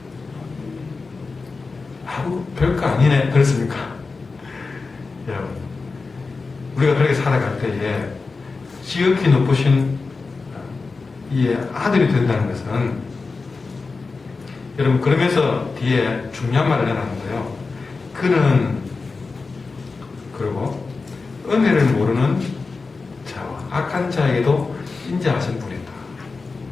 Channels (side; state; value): right; quieter; 4.2 dB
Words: 아우, 별거 아니네. 그렇습니까? 여러분, 우리가 그렇게 살아갈 때에 지극히 높으신 이의 아들이 된다는 것은, 여러분, 그러면서 뒤에 중요한 말을 해놨는데요. 그는, 그리고 은혜를 모르는 자와 악한 자에게도 인자하신 분이다.